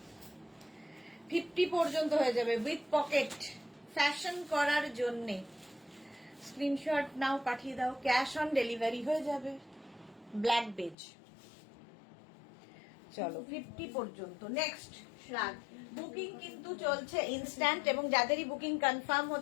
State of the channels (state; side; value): drops out; right; at 11.0 s